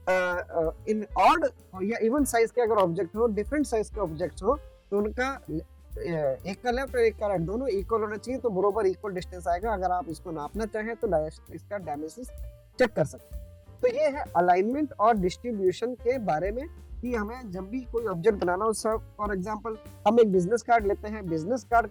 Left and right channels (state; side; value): identical; both; correlation 1.00